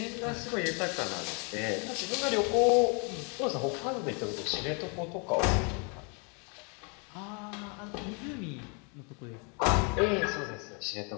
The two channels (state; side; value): quieter; right; 35.0 dB